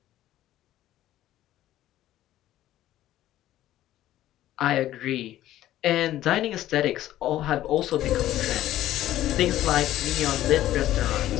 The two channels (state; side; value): quieter; right; 13.7 dB